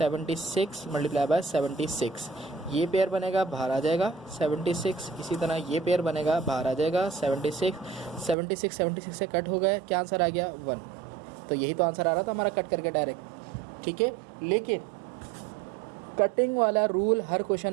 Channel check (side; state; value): left; drops out; at 8.3 s